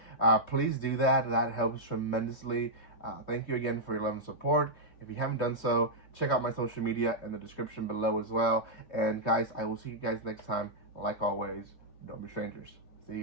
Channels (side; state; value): right; late; 3.2 ms